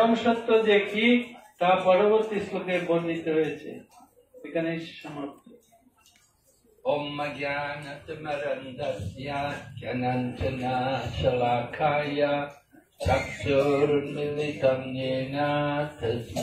সত্য যে কি তা পরবর্তী শ্লোকে বর্ণিত হয়েছে। এখানে সমাপ্ত। Om Jnanatimarandasya Jnananjana Shalakaya Chakshurmilitam Yena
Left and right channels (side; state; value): both; identical; correlation 1.00